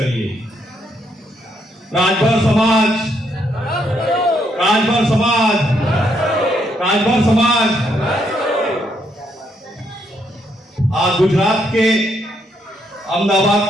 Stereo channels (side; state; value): both; normal; correlation 0.75